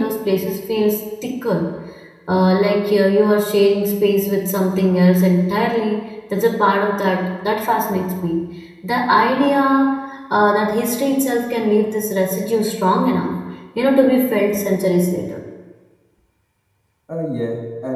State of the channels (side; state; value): both; identical; correlation 1.00